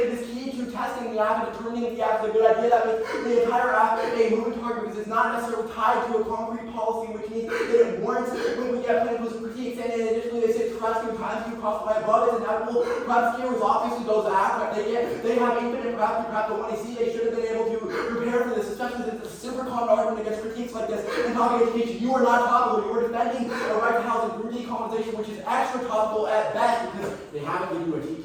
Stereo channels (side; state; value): both; identical; correlation 1.00